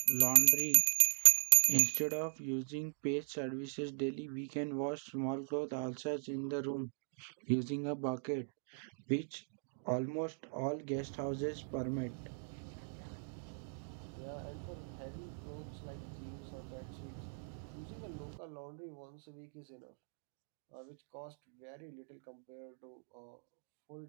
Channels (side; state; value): left; silent; digital silence